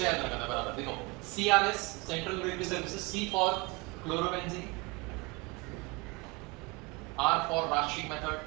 याद रखना बराबर, देखो CRS central regulatory services, C for chlorobenzene, R for Raschig method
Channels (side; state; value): left; quieter; 26.0 dB